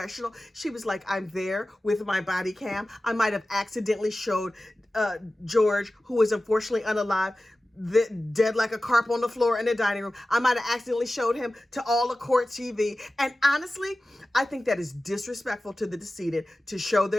She was like, I'm there with my body cam. I might have accidentally showed George, who was unfortunately unalive, dead like a carp on the floor in the dining room. I might have accidentally showed him to all the court TV. And honestly, I think that is disrespectful to the decedent to show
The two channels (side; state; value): both; normal; correlation 0.96